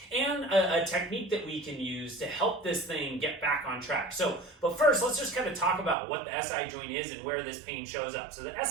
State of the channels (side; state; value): left; drops out; at 6.0 s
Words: and a technique that we can use to help this thing get back on track. But first, let's just kind of talk about what the SI joint is and where this pain shows up. So the